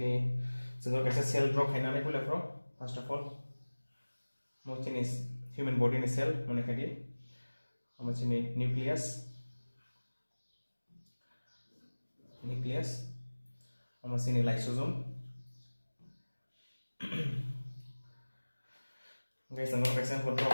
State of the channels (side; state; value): both; inverted; correlation -1.00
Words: जों गासै cell drop खायनानै पुलाफ्राव first of all मोचिनि human body नि सेल माने खादि मोचिनि nucleus मोचिनि lysosome guys ang kaisa control